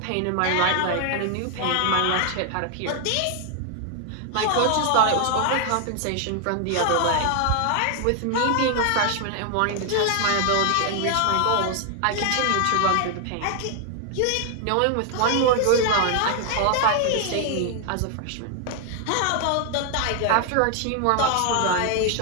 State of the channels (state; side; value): different; both; correlation 0.00